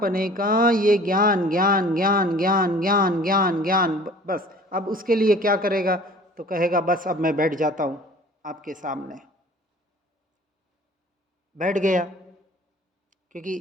का ये ज्ञान ज्ञान ज्ञान ज्ञान ज्ञान ज्ञान ज्ञान बस। अब उसके लिए क्या करेगा, तो कहेगा बस अब मैं बैठ जाता हूँ आपके सामने। बैठ गया, क्योंकि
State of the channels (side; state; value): both; normal; correlation 0.48